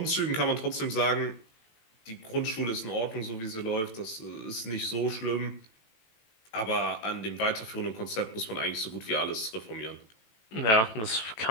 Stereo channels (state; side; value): late; right; 18 ms